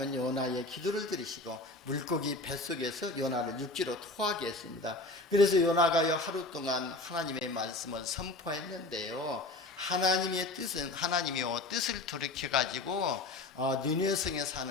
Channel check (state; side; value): quieter; right; 3.0 dB